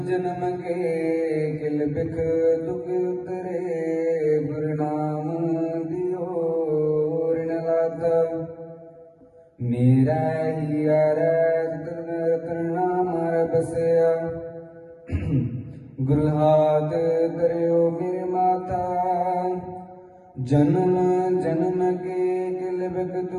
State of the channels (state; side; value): identical; both; correlation 1.00